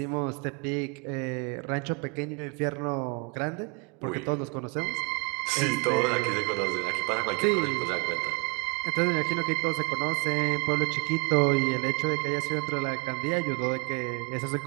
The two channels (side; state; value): left; quieter; 31.6 dB